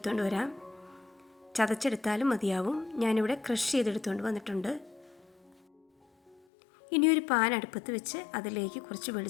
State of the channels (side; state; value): right; drops out; at 6.4 s